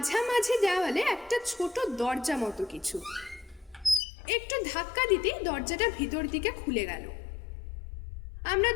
দেওয়ালে একটা ছোট দরজা মতো কিছু। একটু ধাক্কা দিতেই দরজাটা ভিতর দিকে খুলে গেল। আমরা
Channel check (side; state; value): right; drops out; at 4.0 s